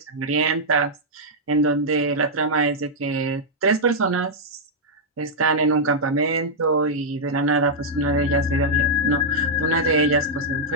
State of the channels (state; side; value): normal; both; correlation -0.06